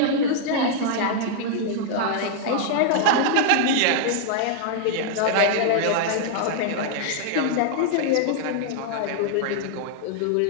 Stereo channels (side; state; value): both; different; correlation -0.01